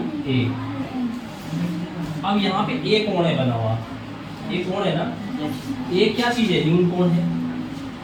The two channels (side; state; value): both; identical; correlation 1.00